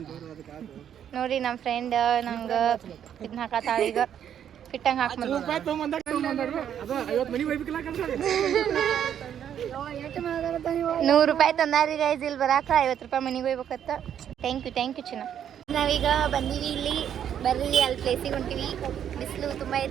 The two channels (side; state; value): left; quieter; 9.4 dB